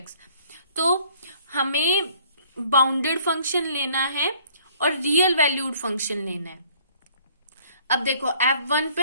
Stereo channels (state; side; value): inverted; both; correlation -0.58